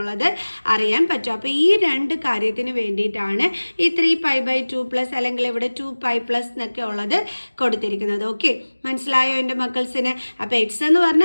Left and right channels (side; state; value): both; inverted; correlation -1.00